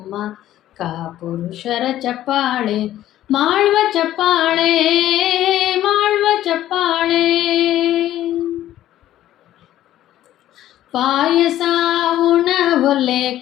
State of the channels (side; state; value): right; quieter; 13.1 dB